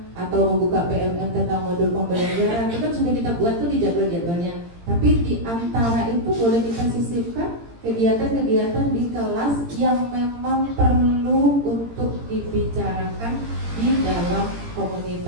atau membuka PMM tentang modul pembelajaran. Itu kan sudah kita buat tuh di jadwal-jadwalnya. Tapi di antara itu boleh kita sisipkan kegiatan-kegiatan di kelas yang memang perlu untuk dibicarakan di dalam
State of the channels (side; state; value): left; late; 17 ms